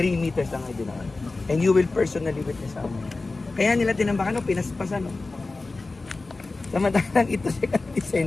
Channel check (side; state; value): right; quieter; 3.5 dB